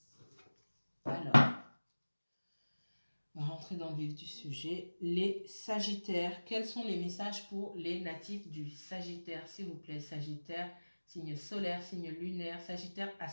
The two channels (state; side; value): inverted; both; correlation -1.00